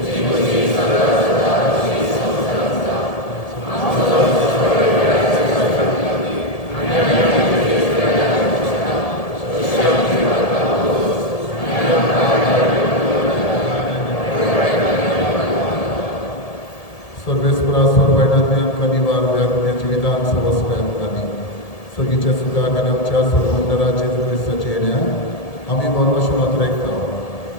सर्वेस्परा सोरबायणांतल्यान कनिवार व्यापण्याचे विधान सवस्वयांनी सगळीच्या सुखाक आनी आमच्या सोरमंडळाचे क्रिस्ताचे येण्याक आमी बरोवश मात्र आयकता.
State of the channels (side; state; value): right; late; 1.7 ms